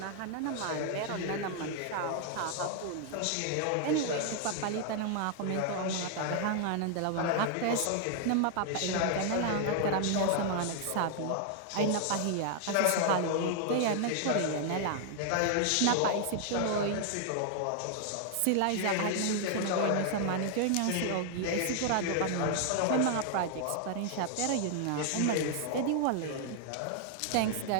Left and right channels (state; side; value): different; both; correlation 0.00